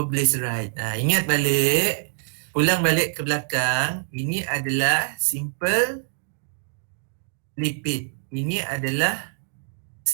Ingat balik, pulang balik ke belakang, ini adalah simple lipid. Ini adalah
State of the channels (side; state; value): left; silent; digital silence